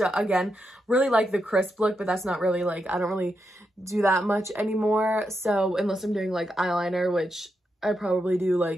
again, really like the crisp look, but that's not really like, I don't really do that much anymore. So unless I'm doing like eyeliner, which I probably do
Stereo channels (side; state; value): both; normal; correlation 0.84